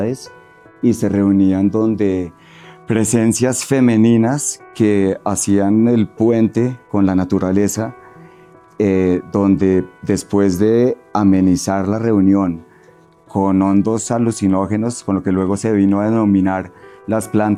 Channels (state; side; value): identical; both; correlation 1.00